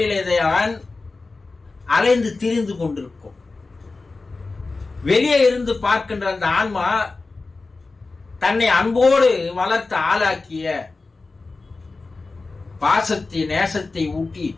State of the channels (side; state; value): right; quieter; 3.7 dB